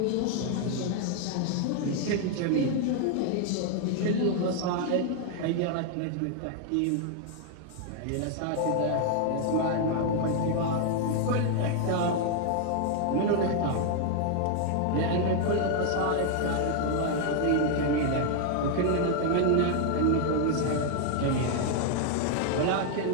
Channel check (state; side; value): different; both; correlation 0.00